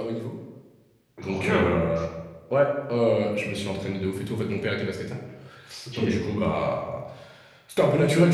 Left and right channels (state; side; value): identical; both; correlation 1.00